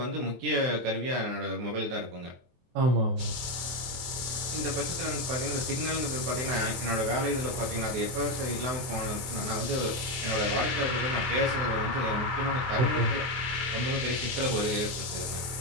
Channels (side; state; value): left; late; 23 ms